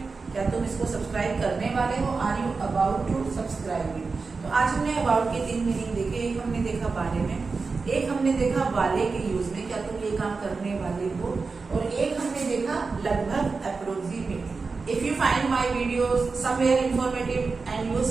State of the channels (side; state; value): left; quieter; 4.4 dB